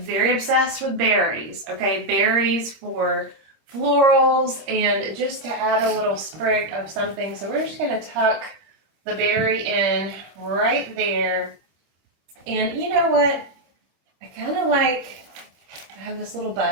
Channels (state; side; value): late; left; 26 ms